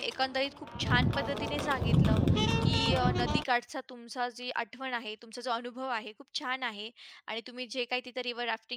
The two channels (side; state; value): both; identical; correlation 1.00